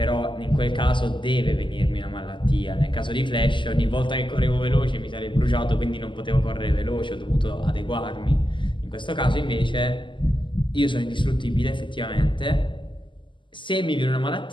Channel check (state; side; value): late; right; 0.24 ms